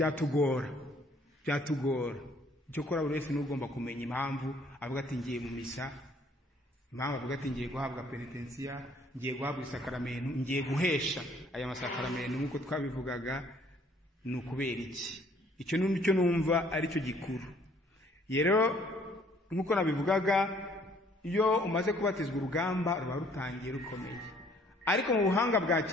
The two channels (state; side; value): normal; both; correlation 0.61